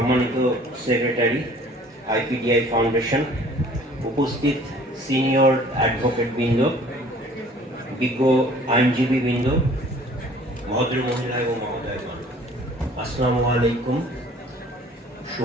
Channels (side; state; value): both; normal; correlation 0.52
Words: সেক্রেটারি আইপিডিআই ফাউন্ডেশন, উপস্থিত সিনিয়র অ্যাডভোকেট বৃন্দ, বিজ্ঞ আইনজীবী বৃন্দ, ভদ্র মহিলা এবং মহোদয়গণ, আসসালামু আলাইকুম,